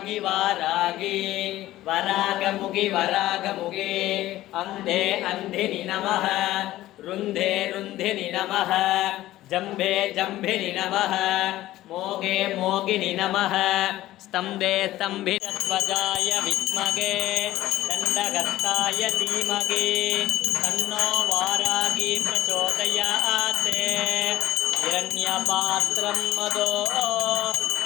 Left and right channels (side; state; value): right; quieter; 15.4 dB